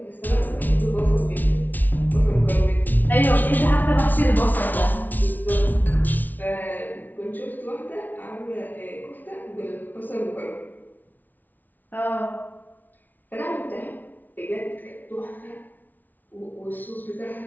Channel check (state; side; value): late; right; 0.082 ms